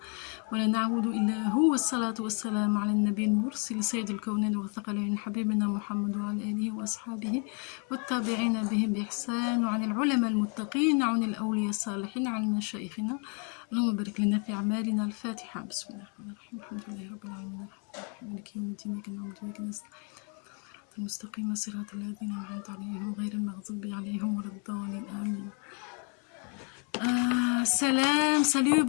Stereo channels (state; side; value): quieter; right; 37.6 dB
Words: ولا نعبد إلا هو والصلاة والسلام على النبي المرسل سيد الكونين والثقلين حبيبنا محمد وعلى آله وأصحابه والتابعين بهم بإحسان وعن العلماء المتقين وعن الأولياء الصالحين وعن مشايخنا اللهم بارك لنا في أعمالنا. الفاتحة. بسم الله الرحمن الرحيم الحمد لله رب العالمين مالك يوم الدين إياك نعبد وإياك نستعين المستقيم صراط الذين أنعمت عليهم غير المغضوب عليهم ولا الضالين آمين. Salut,